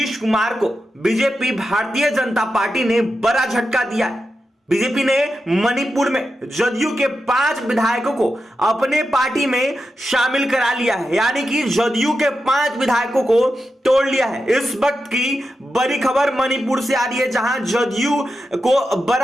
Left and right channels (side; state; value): both; normal; correlation 0.89